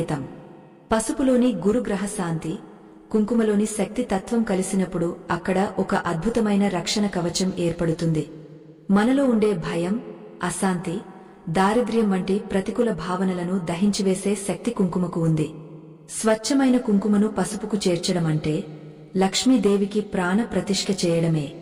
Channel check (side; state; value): both; identical; correlation 1.00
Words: పసుపులోని గురుగ్రహ శాంతి, కుంకుమలోని శక్తి తత్వం కలిసినప్పుడు అక్కడ ఒక అద్భుతమైన రక్షణ కవచం ఏర్పడుతుంది. మనలో ఉండే భయం, అశాంతి, దారిద్ర్యం వంటి ప్రతికూల భావనలను దహించివేసే శక్తి కుంకుమకు ఉంది. స్వచ్ఛమైన కుంకుమను పసుపుకు చేర్చడమంటే లక్ష్మీదేవికి ప్రాణ ప్రతిష్ఠ చేయడమే.